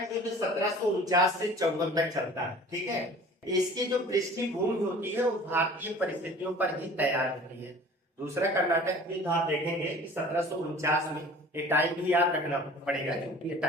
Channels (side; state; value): both; normal; correlation 0.45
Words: युद्ध 1749 से 54 तक चलता है। ठीक है, इसकी जो पृष्ठभूमि होती है वो भारतीय परिस्थितियों पर ही तैयार होती है। दूसरा कर्नाटक युद्ध आप देखेंगे कि 1749 में, ये टाइम भी याद रखना पड़ेगा क्योंकि ये